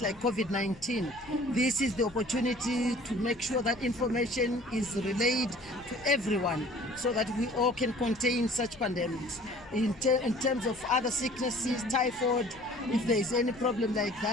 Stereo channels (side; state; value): left; noise; rumble, 23 dB below the sound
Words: like COVID-19. This is the opportunity to make sure that information is relayed to everyone so that we all can contain such pandemics. In terms of other sicknesses, typhoid, if there is any problem like